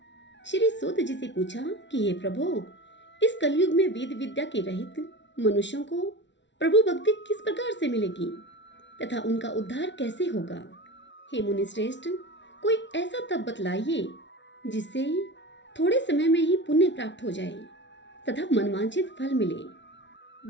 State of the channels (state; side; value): late; right; 0.52 ms